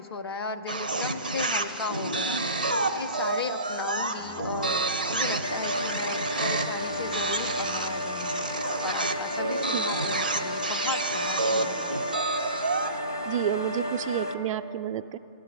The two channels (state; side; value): inverted; both; correlation -0.37